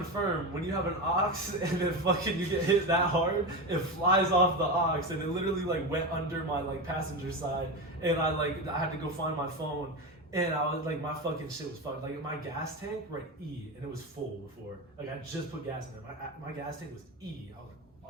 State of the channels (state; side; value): normal; both; correlation 0.19